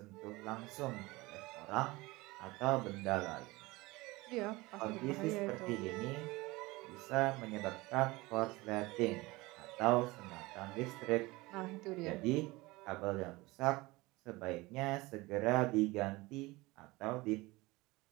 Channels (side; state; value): left; quieter; 21.7 dB